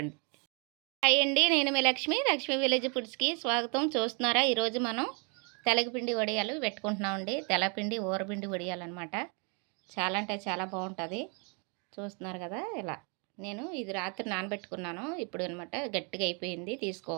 హాయ్ అండి. నేను మీ లక్ష్మి విలేజ్ ఫుడ్స్కి స్వాగతం. చూస్తున్నారా, ఈరోజు మనం తెల్లపిండి వడియాలు పెట్టుకుంటున్నామండి. తెల్లపిండి ఊరపిండి వడియాలు అనమాట. చాలా అంటే చాలా బాగుంటుంది. చూస్తున్నారు కదా, ఇలా నేను ఇది రాత్రి నానబెట్టుకున్నాను. ఇప్పుడు అనమాట గట్టిగా అయిపోయింది,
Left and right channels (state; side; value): quieter; left; 35.2 dB